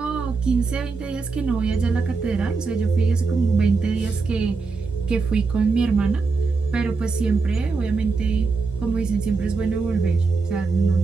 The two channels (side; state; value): left; quieter; 4.4 dB